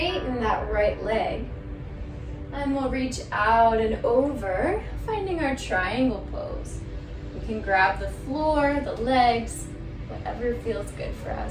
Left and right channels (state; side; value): identical; both; correlation 1.00